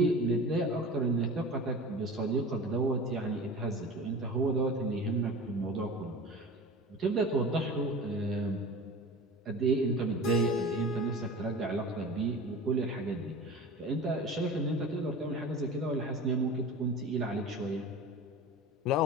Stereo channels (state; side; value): normal; both; correlation 0.35